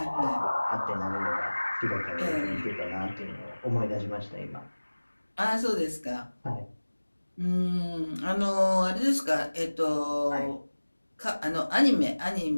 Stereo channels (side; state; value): both; inverted; correlation -1.00